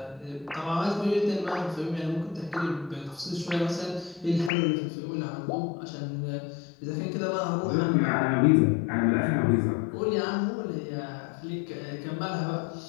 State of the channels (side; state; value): right; drops out; at 4.5 s